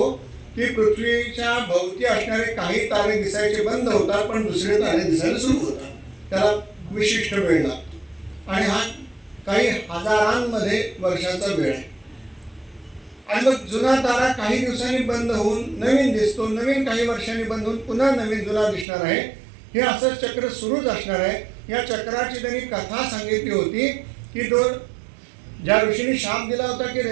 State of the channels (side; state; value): left; drops out; at 18.9 s